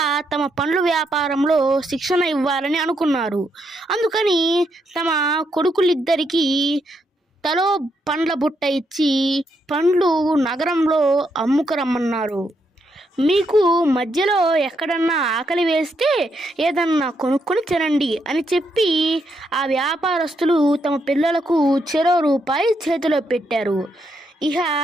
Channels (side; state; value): both; normal; correlation 0.78